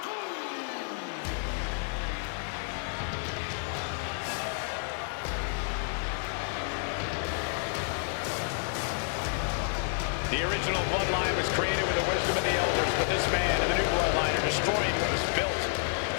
The original Bloodline was created with the wisdom of the elders, but this man and the new Bloodline are destroying what was built.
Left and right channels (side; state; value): right; silent; 58 dB below the other